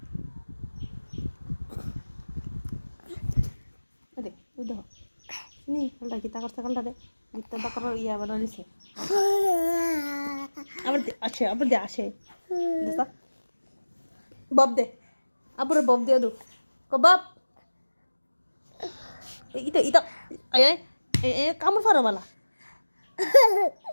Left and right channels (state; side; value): inverted; both; correlation -1.00